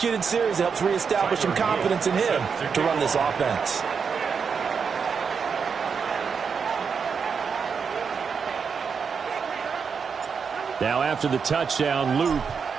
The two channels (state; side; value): quieter; left; 6.1 dB